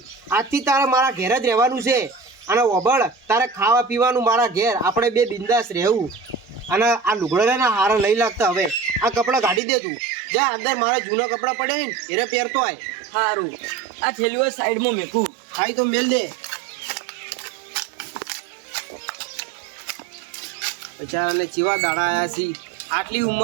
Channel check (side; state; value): left; drops out; at 9.6 s